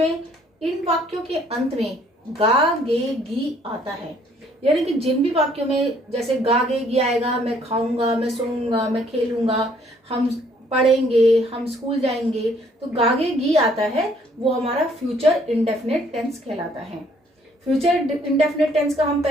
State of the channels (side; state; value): both; normal; correlation 0.63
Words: इन वाक्यों के अंत में गा गे गी आता है, यानी कि जिन भी वाक्यों में जैसे गा गे गी आएगा, मैं खाऊंगा, मैं सोऊंगा, मैं खेलूंगा, हम पढ़ेंगे, हम स्कूल जाएंगे, तो गा गे गी आता है, वो हमारा फ्यूचर इंडेफिनिट टेंस कहलाता है। फ्यूचर इंडेफिनिट टेंस का हम